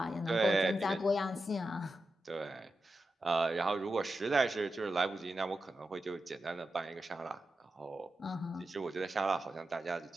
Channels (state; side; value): normal; both; correlation 0.90